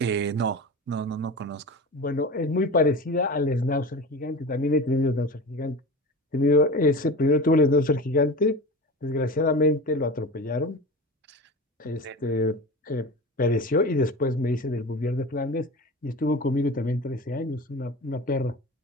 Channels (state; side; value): normal; both; correlation 0.31